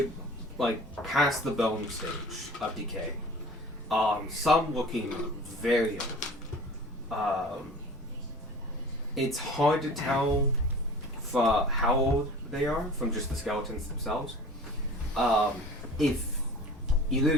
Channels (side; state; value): both; normal; correlation 0.42